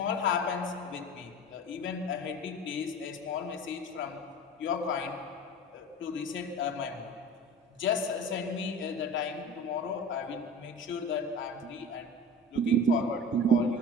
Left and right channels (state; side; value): normal; both; correlation 0.35